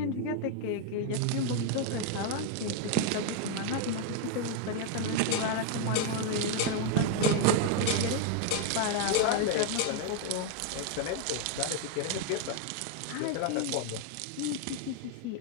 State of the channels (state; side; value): different; both; correlation 0.01